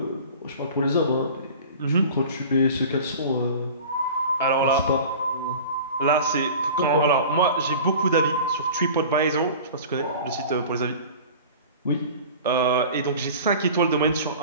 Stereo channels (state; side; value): inverted; both; correlation -0.39